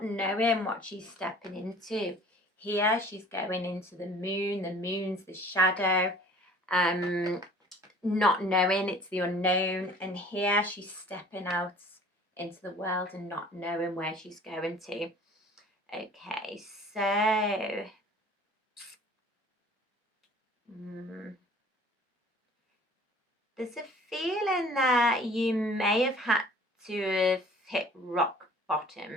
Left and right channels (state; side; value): normal; both; correlation 0.49